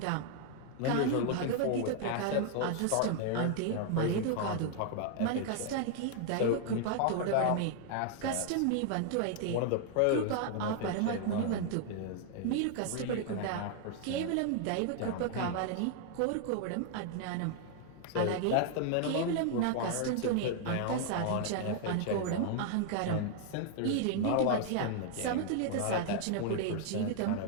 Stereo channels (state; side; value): different; both; correlation 0.00